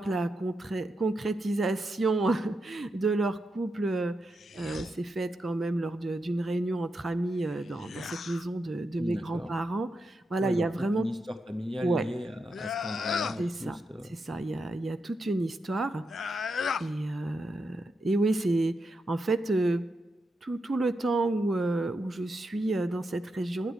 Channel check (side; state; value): both; normal; correlation 0.85